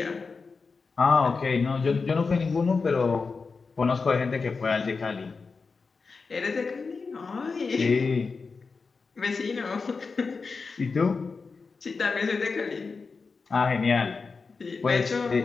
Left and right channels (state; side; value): quieter; right; 4.6 dB